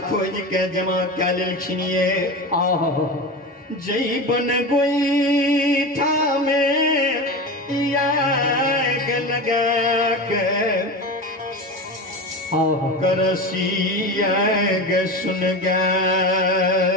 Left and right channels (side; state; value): both; normal; correlation 0.25